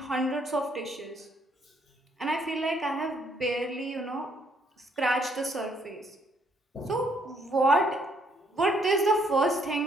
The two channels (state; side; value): normal; both; correlation 0.69